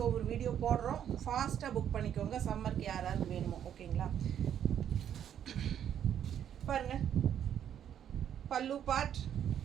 ஒவ்வொரு வீடியோ போடுறோம். ஃபாஸ்ட்டாக புக் பண்ணிக்கோங்க. சம்மருக்கு யாராவது வேணுமோ. ஓகேங்களா? பாருங்கள் பல்லு பார்ட்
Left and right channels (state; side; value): quieter; left; 9.6 dB